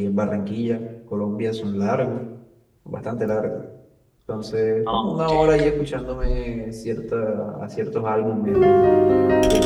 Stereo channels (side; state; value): both; identical; correlation 1.00